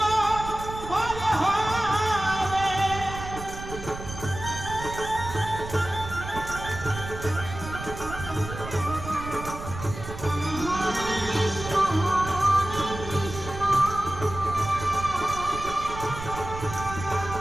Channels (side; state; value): right; noise; rumble, 10 dB below the sound